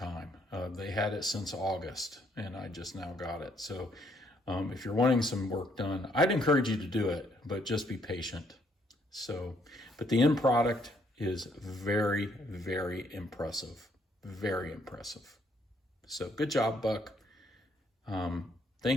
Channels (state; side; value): normal; both; correlation 0.69